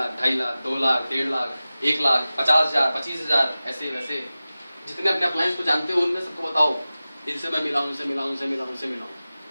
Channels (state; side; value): inverted; both; correlation -0.96